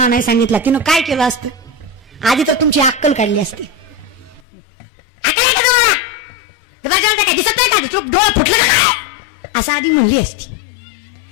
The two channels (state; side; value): drops out; right; at 4.4 s